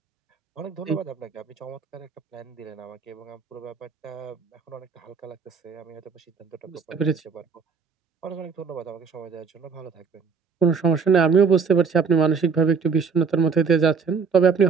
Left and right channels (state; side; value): quieter; left; 5.6 dB